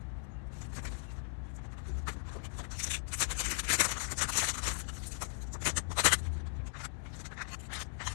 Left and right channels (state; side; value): silent; right; digital silence